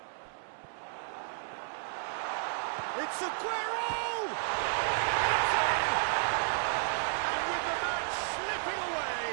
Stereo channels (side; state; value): left; silent; 56 dB below the other